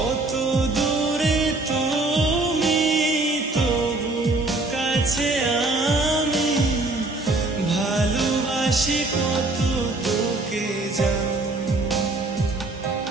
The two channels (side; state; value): left; quieter; 3.0 dB